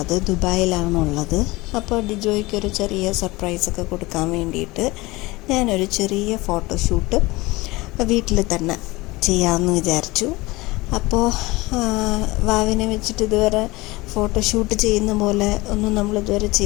ദുബായിലാണുള്ളത്. അപ്പോൾ ഡിജോയ്ക്കൊരു ചെറിയ സർപ്രൈസൊക്കെ കൊടുക്കാൻ വേണ്ടിയിട്ട് ഞാനൊരു ചെറിയ ഫോട്ടോഷൂട്ട് വീട്ടിൽ തന്നെ ചെയ്യാമെന്ന് വിചാരിച്ചു. അപ്പോൾ വാവിനെ വെച്ചിട്ട് ഇതുവരെ ഫോട്ടോഷൂട്ട് ചെയ്യുന്ന പോലെ ഒന്നും നമ്മളിതുവരെ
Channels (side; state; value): right; quieter; 21.6 dB